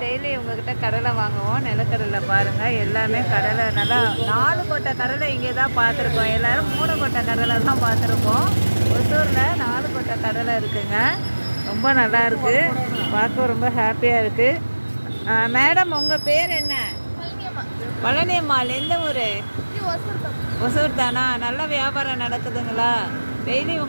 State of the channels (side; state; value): both; inverted; correlation -1.00